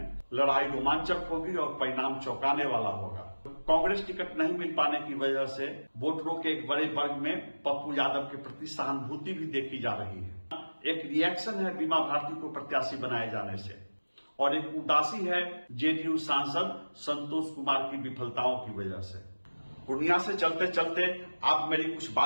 लड़ाई रोमांचक होगी और परिणाम चौंकाने वाला होगा। कांग्रेस टिकट नहीं मिल पाने की वजह से वोटरों के एक बड़े वर्ग में पप्पू यादव के प्रति सहानुभूति भी देखी जा रही है। एक रिएक्शन है बीमा भारती को प्रत्याशी बनाए जाने से, और एक उदासी है जेडीयू सांसद संतोष कुमार की विफलताओं की वजह से। पूर्णिया से चलते चलते आप मेरी कुछ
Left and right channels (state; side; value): inverted; both; correlation -1.00